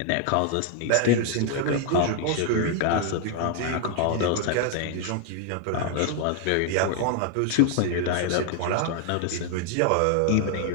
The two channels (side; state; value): both; different; correlation 0.00